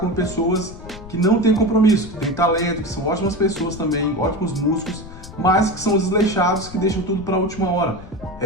pessoas que não têm compromisso, que têm talento, que são ótimas pessoas também, ótimos músicos, mas que são desleixados, que deixam tudo para a última hora.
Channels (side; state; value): left; noise; rumble, 15 dB below the sound